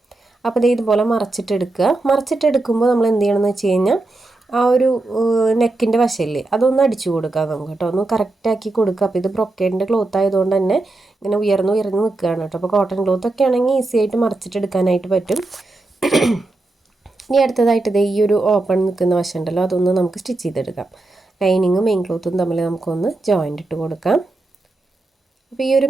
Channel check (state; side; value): quieter; left; 3.0 dB